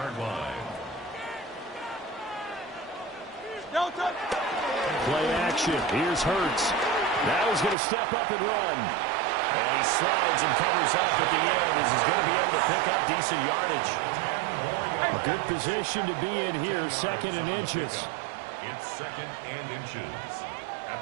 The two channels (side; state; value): left; drops out; at 7.8 s